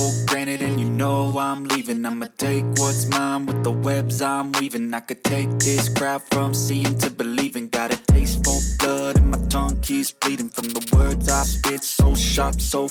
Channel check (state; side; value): identical; both; correlation 1.00